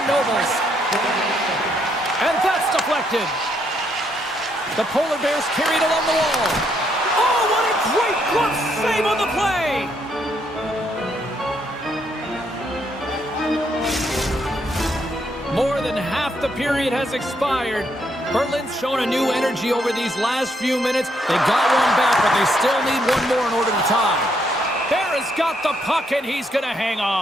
Nobles. And that's deflected. The Polar Bears carried along the wall. Oh, what a great glove save on the play! More than half the period has expired. Berlin's shown a new energy over these last few minutes. They got one back, but they still need one more in order to tie. Bear has got the puck, and he's going to hang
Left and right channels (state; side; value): normal; both; correlation 0.74